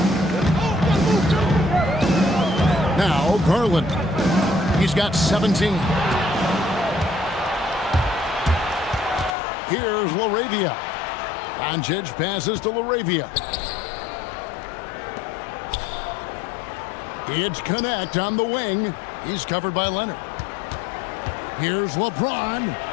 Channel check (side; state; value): right; drops out; at 9.3 s